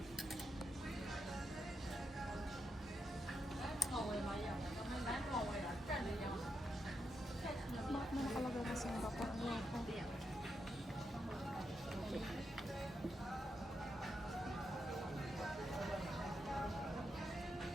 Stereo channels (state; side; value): normal; both; correlation 0.84